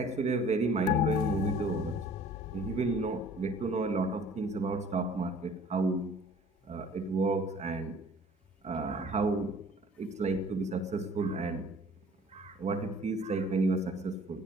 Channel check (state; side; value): normal; both; correlation 0.51